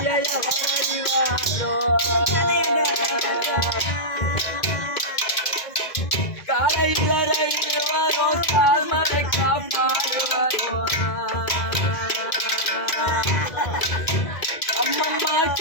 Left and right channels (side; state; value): right; late; 2.1 ms